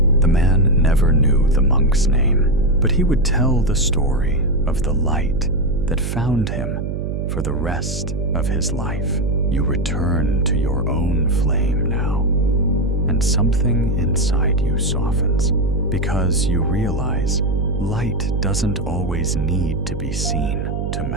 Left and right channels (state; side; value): noise; right; hum, 3 dB below the sound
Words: The man never knew the monk's name, but he would tell the story of the light that found him for the rest of his life. You return to your own flame now, and something inside you softens, because you realize light doesn't always need to be seen to